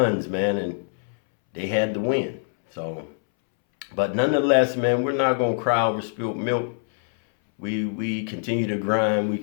man, and they had to win. So, but nonetheless, man, we're not gonna cry over spilled milk. We continue to grind. We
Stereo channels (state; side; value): silent; right; 63 dB below the other